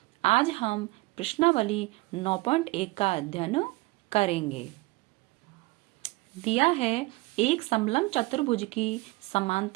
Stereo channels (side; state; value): left; quieter; 22.3 dB